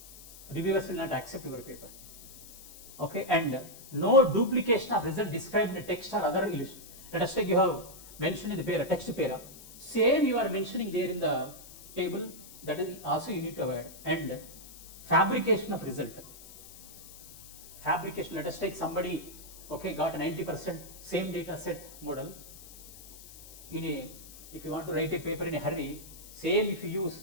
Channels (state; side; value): noise; left; hiss, 18 dB below the sound